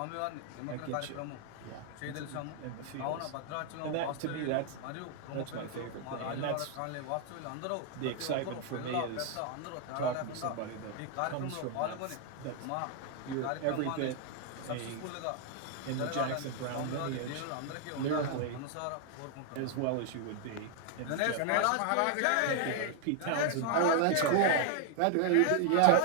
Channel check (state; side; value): different; both; correlation 0.00